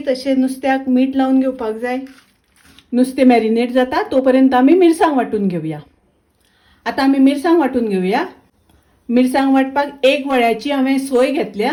अशें नुस्त्याक मीठ लावन घेवपाक जाय। नुस्तें मॅरिनेट जाता तोपर्यंत आमी मिरसांग वांटून घेवया। आतां आमी मिरसांग वांटून घेवया। मिरसांग वांटपाक एक वळ्याची हांवें सोय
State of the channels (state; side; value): identical; both; correlation 1.00